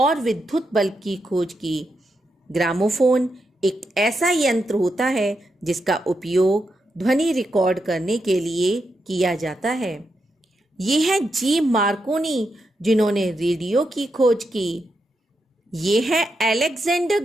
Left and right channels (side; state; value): both; normal; correlation 0.84